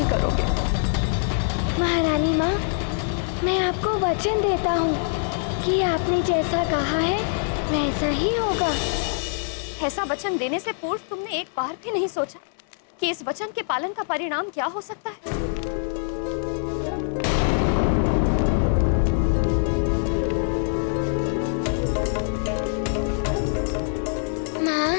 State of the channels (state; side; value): silent; right; 59 dB below the other